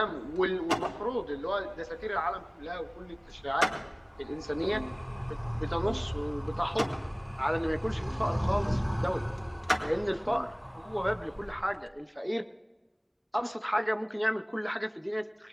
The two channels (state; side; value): identical; both; correlation 1.00